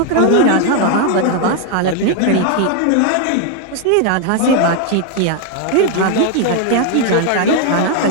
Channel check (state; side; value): different; both; correlation 0.01